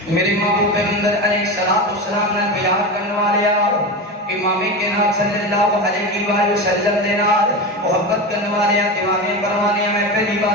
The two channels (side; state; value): both; normal; correlation 0.23